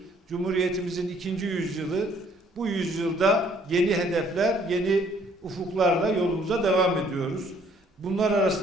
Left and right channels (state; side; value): normal; both; correlation 0.62